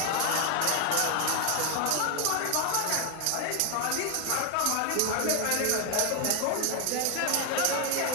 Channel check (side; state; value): both; different; correlation 0.01